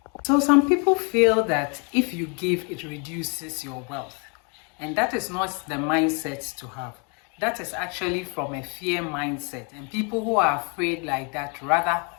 So some people feel that if you give, it reduces your wealth. And that is not the mindset to have. That is actually from a fear mindset. And people who are afraid like that rather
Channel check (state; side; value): quieter; right; 35.6 dB